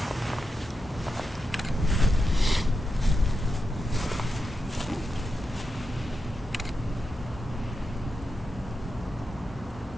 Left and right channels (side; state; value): both; normal; correlation 0.87